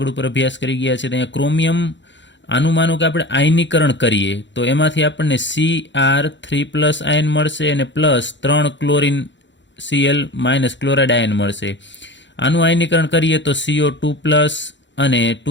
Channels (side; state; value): right; late; 0.53 ms